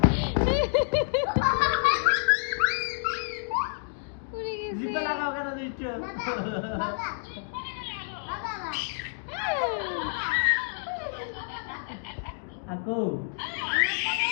জিব্বা লাগাও কেন দুটো? aku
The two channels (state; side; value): silent; right; digital silence